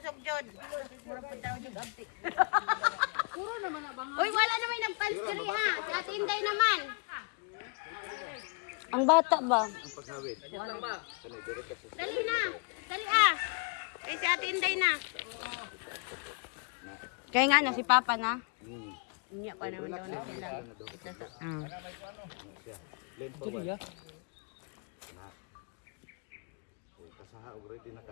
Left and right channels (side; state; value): right; quieter; 33.4 dB